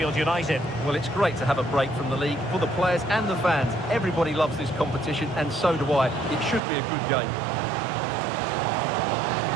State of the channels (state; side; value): drops out; left; at 6.6 s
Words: United. Well, it's great to have a break from the league for the players and the fans. Everybody loves this competition, and so do I. It should be a good game.